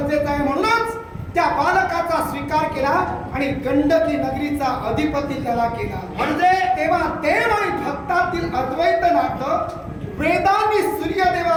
आहे. म्हणूनच त्या बालकाचा स्वीकार केला आणि गंडकी नगरीचा अधिपती त्याला केला. म्हणजे तेव्हा देव आणि भक्तातील अद्वैत नातं वेदांनी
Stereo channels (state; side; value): identical; both; correlation 1.00